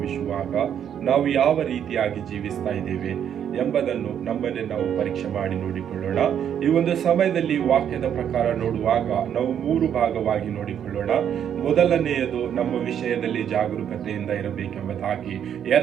ನಾವು ಯಾವ ರೀತಿಯಾಗಿ ಜೀವಿಸ್ತಾ ಇದ್ದೇವೆ ಎಂಬುದನ್ನು ನಮ್ಮನ್ನೇ ನಾವು ಪರೀಕ್ಷೆ ಮಾಡಿ ನೋಡಿಕೊಳ್ಳೋಣ. ಈ ಒಂದು ಸಮಯದಲ್ಲಿ ವಾಕ್ಯದ ಪ್ರಕಾರ ನೋಡುವಾಗ ನಾವು 3 ಭಾಗವಾಗಿ ನೋಡಿಕೊಳ್ಳೋಣ. ಮೊದಲನೆಯದು ನಮ್ಮ ವಿಷಯದಲ್ಲಿ ಜಾಗರೂಕತೆಯಿಂದ ಇರಬೇಕೆಂಬುದಾಗಿ,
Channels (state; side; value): quieter; left; 9.1 dB